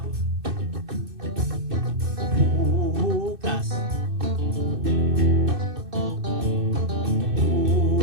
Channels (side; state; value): left; late; 2.6 ms